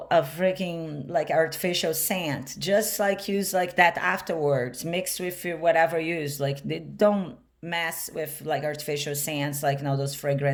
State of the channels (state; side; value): identical; both; correlation 1.00